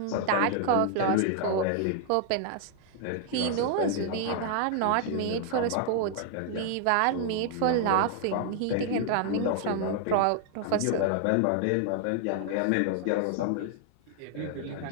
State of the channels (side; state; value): both; different; correlation 0.00